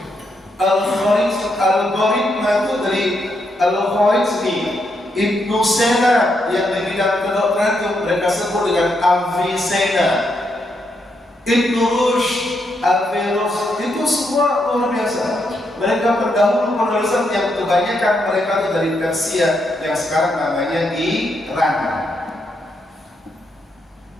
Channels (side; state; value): both; normal; correlation 0.79